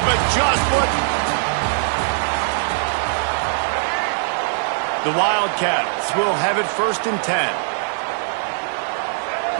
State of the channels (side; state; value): left; silent; digital silence